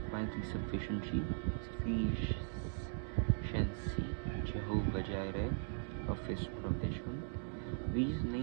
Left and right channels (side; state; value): left; silent; digital silence